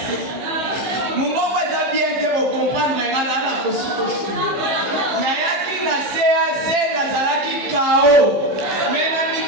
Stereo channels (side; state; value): left; late; 15 ms